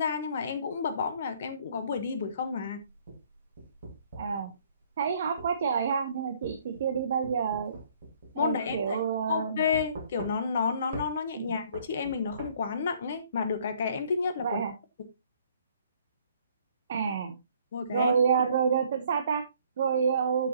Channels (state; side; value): inverted; both; correlation -0.61